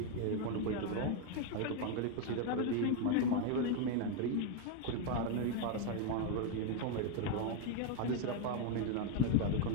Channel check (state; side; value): different; both; correlation 0.01